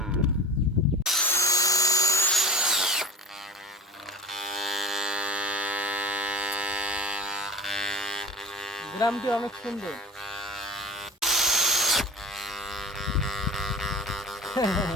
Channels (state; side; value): normal; both; correlation 0.35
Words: গ্রামটি অনেক সুন্দর।